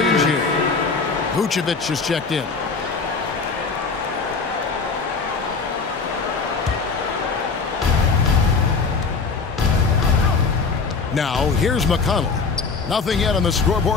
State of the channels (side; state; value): right; quieter; 4.7 dB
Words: here. Vucevic is checked in. Now, here's McConnell. Nothing yet on the